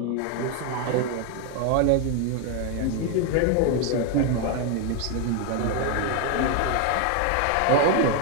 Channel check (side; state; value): both; different; correlation 0.01